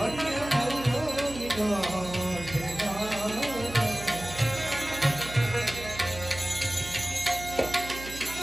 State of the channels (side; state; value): right; noise; hum, 12 dB below the sound